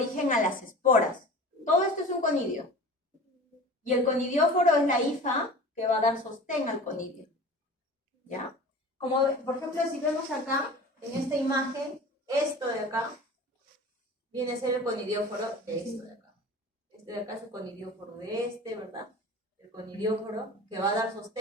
a las esporas. Todo esto es un conidio. Y el conidióforo es la hifa que va a dar sostén al conidio. ¿Ya? Como, por ejemplo, si vemos acá, en esta imagen, esto de acá, viene a ser el conidióforo de esto de acá. Este de acá es el conidióforo de este, ¿verdad? El conidióforo que va a dar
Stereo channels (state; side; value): normal; both; correlation 0.38